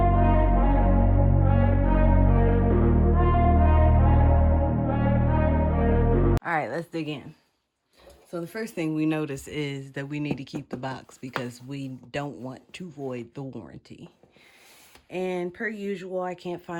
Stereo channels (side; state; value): both; identical; correlation 1.00